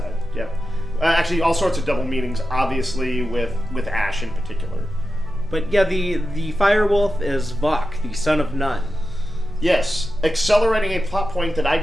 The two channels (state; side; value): normal; both; correlation 0.91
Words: Yeah. Actually, all sorts of double meanings. Obviously, with Ash in particular. But yeah, the Firewolf is Vok, the son of Nun. Yes, accelerating a plot point that I